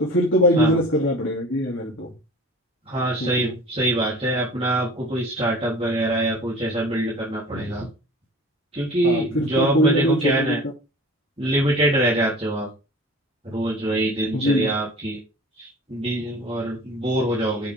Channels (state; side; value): normal; both; correlation 0.42